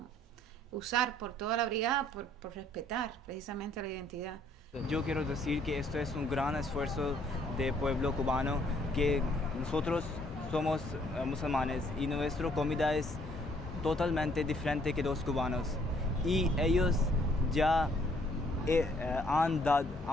usar por toda la brigada por respetar precisamente la identidad. Yo quiero decir que esto es un gran esfuerzo del pueblo cubano, que nosotros somos musulmanes y nuestra comida es totalmente diferente que los cubanos, y ellos ya han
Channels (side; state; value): both; normal; correlation 0.64